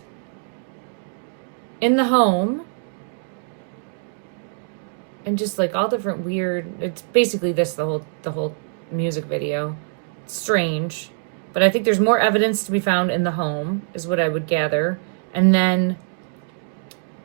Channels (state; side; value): silent; left; digital silence